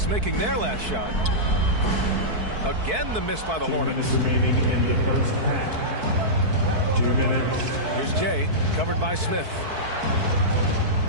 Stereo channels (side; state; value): left; late; 4.6 ms